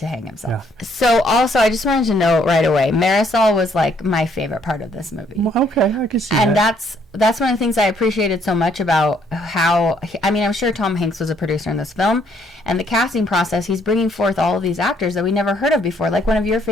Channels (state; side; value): normal; both; correlation 0.67